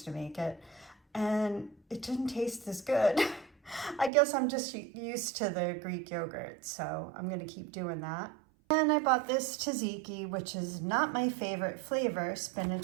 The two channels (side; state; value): left; drops out; at 4.1 s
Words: to make it, and it didn't taste as good. I guess I'm just used to the Greek yogurt, so I'm gonna keep doing that. And I bought this tzatziki, which is not my favorite flavor,